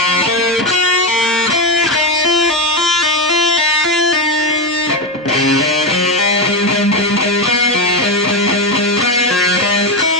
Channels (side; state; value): both; normal; correlation 0.11